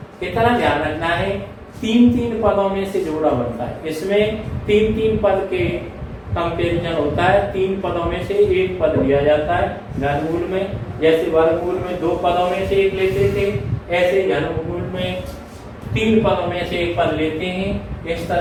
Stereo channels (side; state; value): both; identical; correlation 1.00